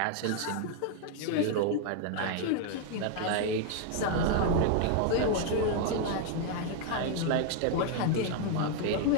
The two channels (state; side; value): different; both; correlation 0.00